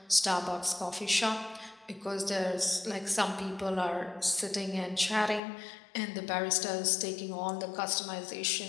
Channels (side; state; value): right; drops out; at 5.4 s